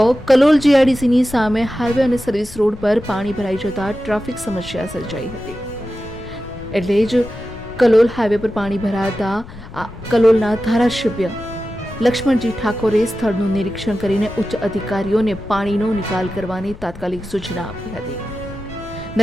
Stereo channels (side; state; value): left; noise; rumble, 16 dB below the sound